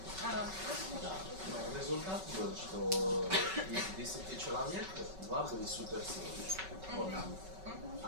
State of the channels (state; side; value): late; left; 5.3 ms